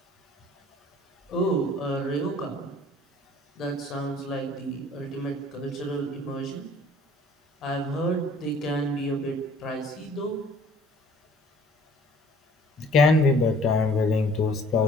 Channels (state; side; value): normal; both; correlation 0.54